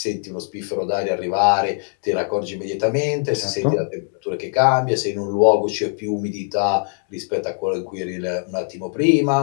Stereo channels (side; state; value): right; silent; 56 dB below the other